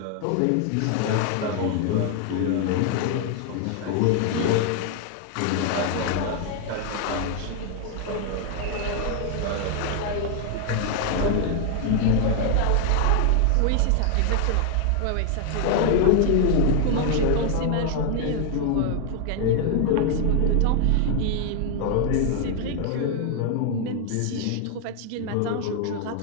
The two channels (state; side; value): different; both; correlation 0.00